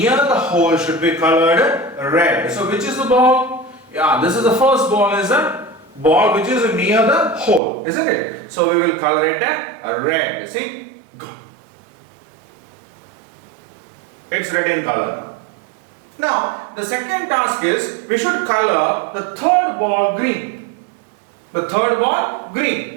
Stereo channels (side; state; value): left; drops out; at 7.6 s